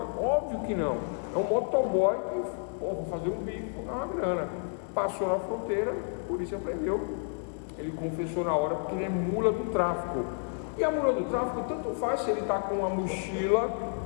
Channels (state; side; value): silent; right; 58 dB below the other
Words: Óbvio que não. É um motoboy que, vou fazer um bico, vou ganhar uma grana. Passou na fronteira, a polícia prendeu. Ele confessou na hora porque ele é mula do tráfico. E a mula do tráfico tanto faz se ele está com uma mochila